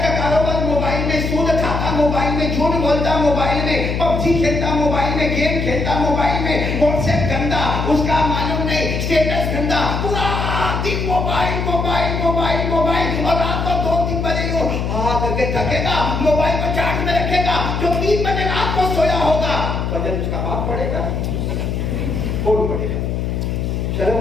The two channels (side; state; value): left; noise; hum, 1 dB below the sound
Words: کا کاروبار موبائل میں، سود کھاتا موبائل میں، جھوٹ بولتا موبائل میں، پب جی کھیلتا موبائل میں، گیم کھیلتا موبائل میں، واٹس ایپ گندا، اس کا معلوم نہیں اسٹیٹس گندا، پورا دن موبائل موبائل موبائل موبائل، اور رات کو 2-3 بجے کر کے تھکے گا، موبائل کو چارج میں رکھے گا، جو 3 بجے رات کو سویا ہوگا فجر اس کا باپ پڑے گا، کون پڑے گا؟